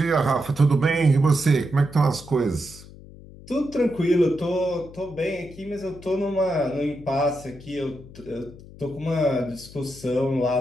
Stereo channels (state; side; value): noise; left; hum, 18 dB below the sound